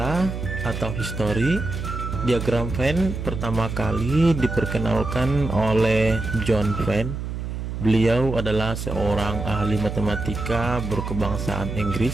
atau histori, diagram Venn pertama kali diperkenalkan oleh John Venn. Beliau adalah seorang ahli matematika berkebangsaan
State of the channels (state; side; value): noise; right; hum, 5 dB below the sound